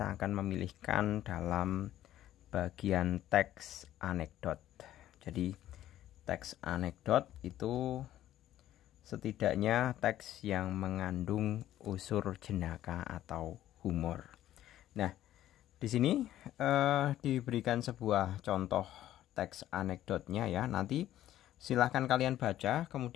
akan memilihkan dalam bagian teks anekdot. Jadi teks anekdot itu setidaknya teks yang mengandung unsur jenaka atau humor. Nah, di sini diberikan sebuah contoh teks anekdotnya ya. Nanti silahkan kalian baca.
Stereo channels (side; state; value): right; quieter; 12.9 dB